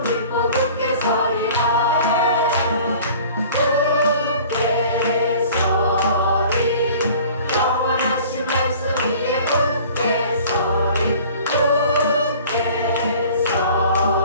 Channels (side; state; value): both; inverted; correlation -0.47